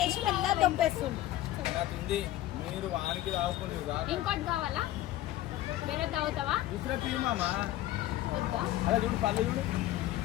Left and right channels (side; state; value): right; quieter; 14.6 dB